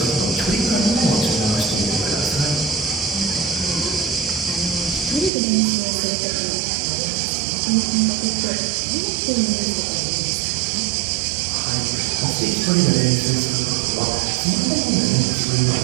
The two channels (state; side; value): drops out; left; at 5.3 s